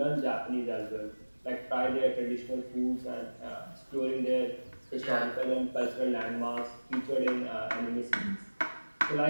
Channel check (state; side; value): inverted; both; correlation -1.00